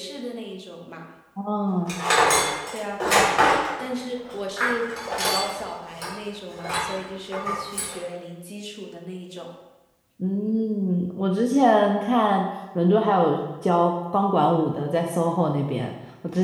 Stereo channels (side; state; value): both; identical; correlation 1.00